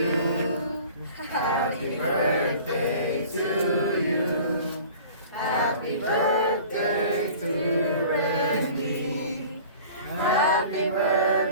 Happy birthday to you. Happy birthday to Randy. Happy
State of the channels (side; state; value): both; inverted; correlation -0.45